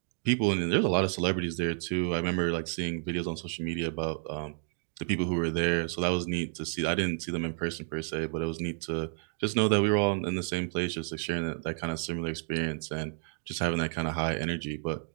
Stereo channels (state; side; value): silent; left; 57 dB below the other